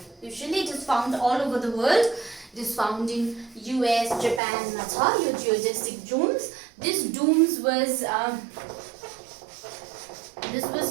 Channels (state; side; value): drops out; left; at 4.4 s